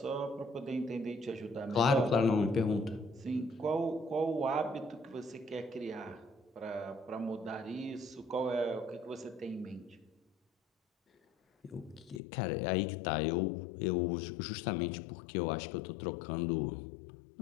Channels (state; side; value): drops out; right; at 12.2 s